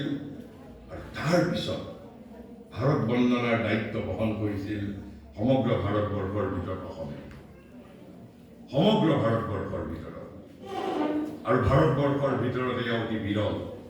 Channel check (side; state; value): both; identical; correlation 1.00